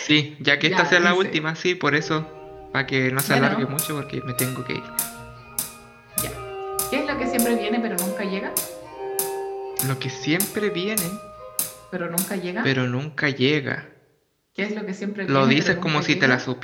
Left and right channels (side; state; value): both; identical; correlation 1.00